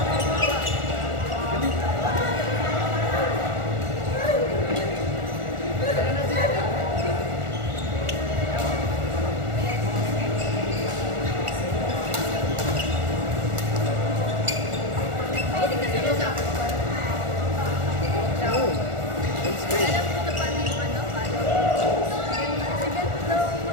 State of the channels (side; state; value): left; late; 1.4 ms